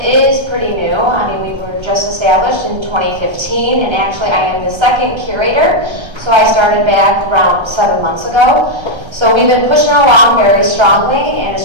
pretty new. I mean, we were just established in 2015, and actually I am the 2nd curator, so I started back around 7 months ago. So we've been pushing along very strongly, and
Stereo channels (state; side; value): late; left; 1.3 ms